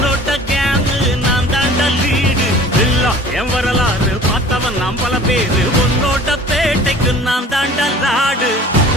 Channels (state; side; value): normal; both; correlation 0.46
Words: கேங்கு நான் தாண்டா லீடு. எல்லாம் என் வரலாறு பார்த்தவன் நாம் பல பேரு உன்னோட்ட பேட்டைக்கு நான் தாண்டா லாடு.